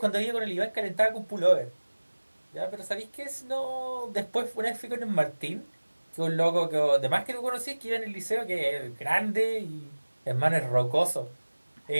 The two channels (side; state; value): both; inverted; correlation -1.00